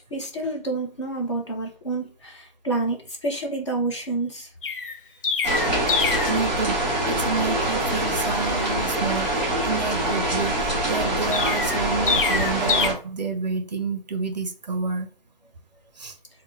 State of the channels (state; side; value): normal; both; correlation -0.07